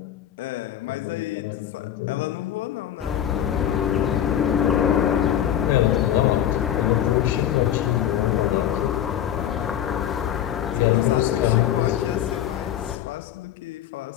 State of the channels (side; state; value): right; quieter; 10.7 dB